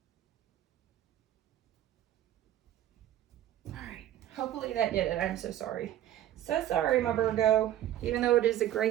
Hopefully that did it. I'm so sorry. So sorry, my Virgo. Even though it is a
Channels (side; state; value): left; quieter; 12.4 dB